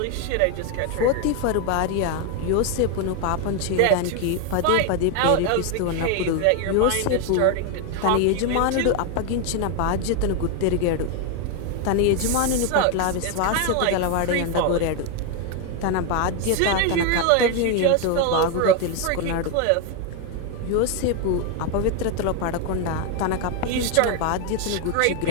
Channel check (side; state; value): both; different; correlation 0.01